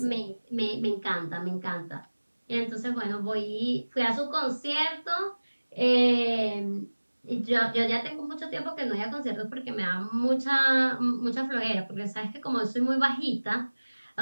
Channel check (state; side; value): inverted; both; correlation -1.00